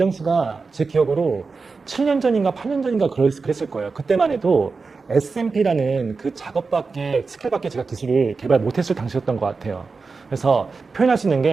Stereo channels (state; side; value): quieter; left; 4.4 dB